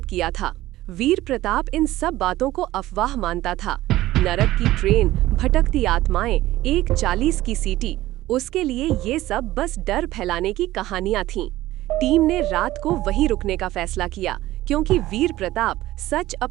किया था। वीर प्रताप इन सब बातों को अफवाह मानता था। नरक की ट्रेन, भटकती आत्माएं, 1:40 की सीटी, उसके लिए ये सब बस डर फैलाने की कहानियां थीं। टीम ने रात को वहीं रुकने का फैसला किया क्योंकि वीर प्रताप सच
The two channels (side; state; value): left; quieter; 16.1 dB